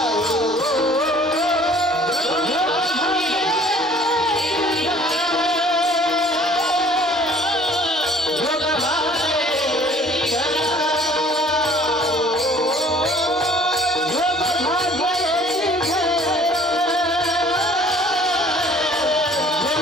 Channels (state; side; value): normal; both; correlation 0.53